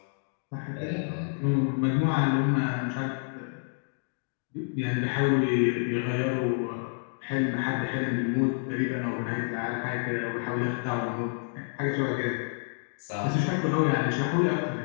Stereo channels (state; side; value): silent; right; digital silence